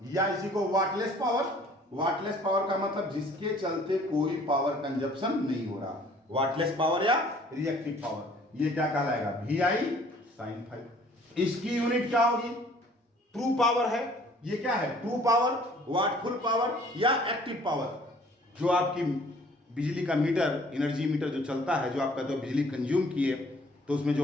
या इसी को वाटलेस पावर। वाटलेस पावर का मतलब जिसके चलते कोई पावर कंजप्शन नहीं हो रहा, वाटलेस पावर या रिएक्टिव पावर। ये क्या कहलाएगा? V I sine phi. इसकी यूनिट क्या होगी? ट्रू पावर है। ये क्या है? ट्रू पावर, वाटफुल पावर या एक्टिव पावर। जो आपकी बिजली का मीटर, एनर्जी मीटर जो चलता है, जो आप कहते हो बिजली कंज्यूम किए, तो उसमें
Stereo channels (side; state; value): both; normal; correlation 0.55